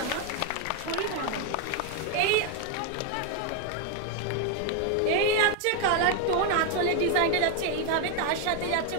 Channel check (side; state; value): both; different; correlation 0.01